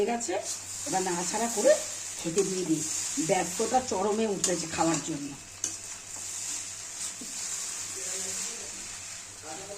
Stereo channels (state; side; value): identical; both; correlation 1.00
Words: গেছে। এবার নাড়াচাড়া করে খেতে দিয়ে দিই। ব্যর্থতা চরমে উঠেছে খাওয়ার জন্য।